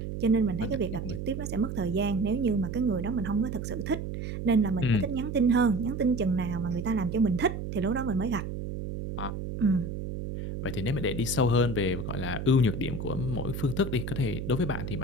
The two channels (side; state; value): right; noise; hum, 5 dB below the sound